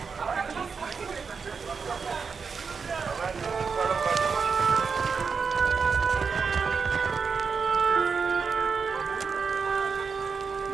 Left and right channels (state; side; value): quieter; left; 5.5 dB